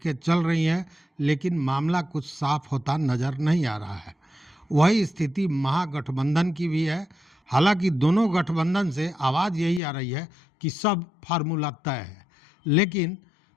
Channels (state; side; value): drops out; right; at 9.8 s